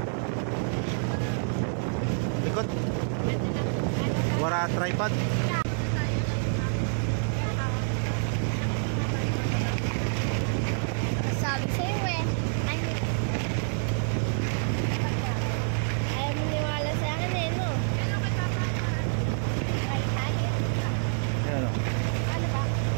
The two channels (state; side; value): silent; left; digital silence